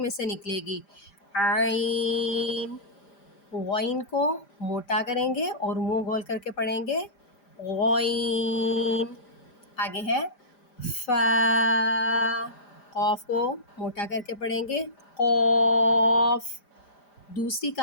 سے نکلے گی۔ عین، غین کو موٹا کریں گے اور منہ گول کر کے پڑھیں گے۔ غین، آگے ہے فا، قاف کو موٹا کر کے پڑھیں گے۔ قاف، دوسری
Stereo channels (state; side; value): late; right; 5.0 ms